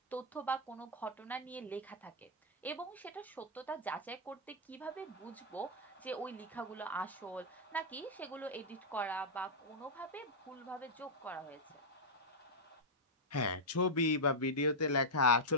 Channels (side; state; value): both; normal; correlation -0.06